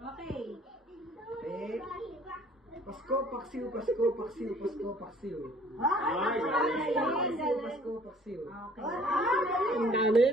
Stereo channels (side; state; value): both; normal; correlation 0.55